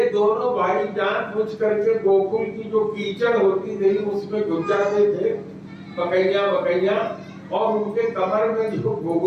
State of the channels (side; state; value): both; identical; correlation 1.00